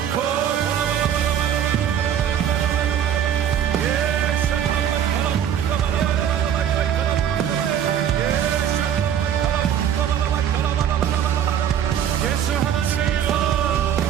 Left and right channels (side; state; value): left; quieter; 9.4 dB